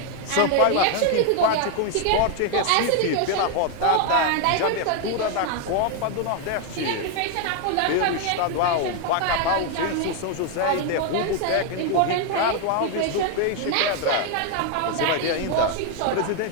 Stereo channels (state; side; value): different; both; correlation 0.01